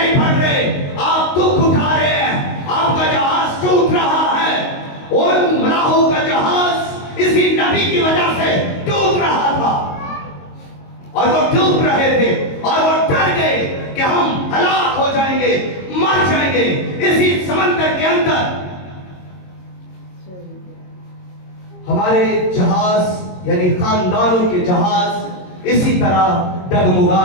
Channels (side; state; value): right; late; 22 ms